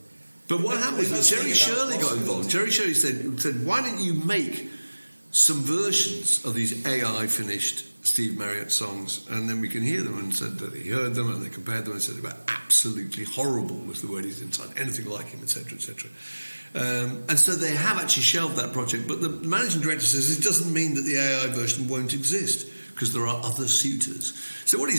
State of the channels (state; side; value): inverted; both; correlation -1.00